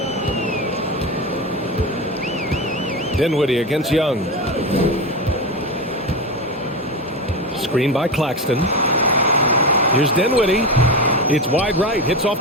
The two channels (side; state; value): both; normal; correlation 0.19